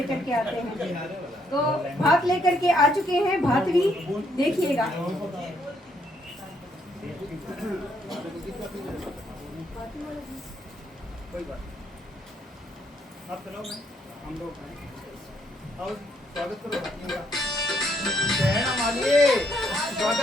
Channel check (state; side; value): normal; both; correlation 0.72